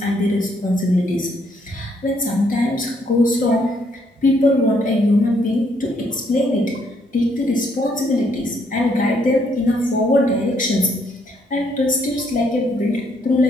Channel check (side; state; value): both; normal; correlation 0.70